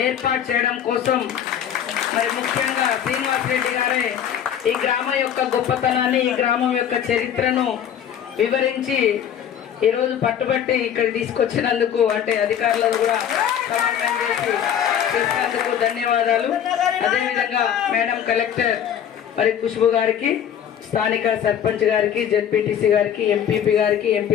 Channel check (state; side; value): quieter; right; 9.2 dB